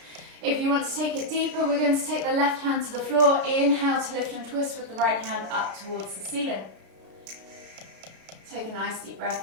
If you want to take it deeper, we're going to take the left hand to the floor. Inhale to lift and twist with the right hand up towards the ceiling. Take a nice deep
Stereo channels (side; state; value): left; late; 33 ms